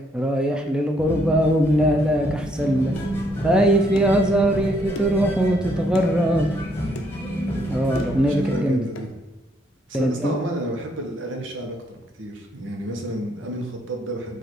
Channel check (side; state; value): both; normal; correlation 0.70